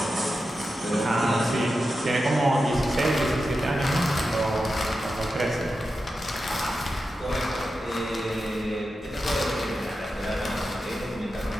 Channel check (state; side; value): normal; both; correlation 0.90